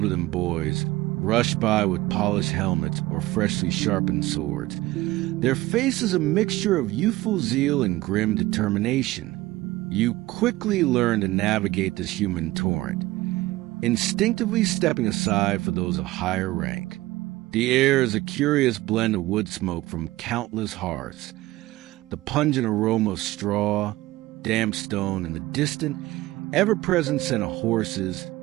than boys, rush by with polished helmets or freshly sharpened swords. Their faces a mixture of youthful zeal and grim determination. You quickly learn to navigate this human torrent, instinctively stepping aside for those of higher rank. The air is a curious blend of wood smoke from countless hearths, the pungent aroma of straw, damp stone, and the distant, ever-present scent of horses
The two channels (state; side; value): quieter; left; 18.2 dB